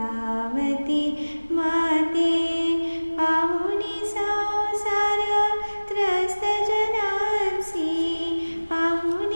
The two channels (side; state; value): both; inverted; correlation -1.00